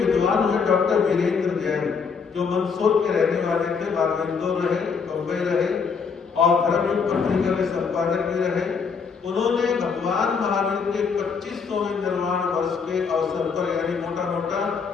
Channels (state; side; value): quieter; right; 5.7 dB